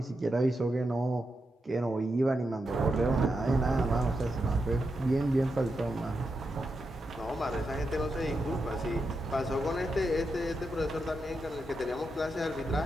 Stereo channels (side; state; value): both; normal; correlation 0.86